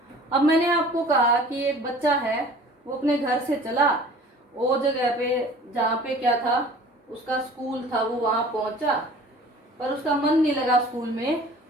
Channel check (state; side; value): normal; both; correlation 0.46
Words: अब मैंने आपको कहा कि एक बच्चा है, वो अपने घर से चला, वो जगह पे जहाँ पे क्या था उसका स्कूल था, वो वहां पहुंचा, पर उसका मन नहीं लगा स्कूल में,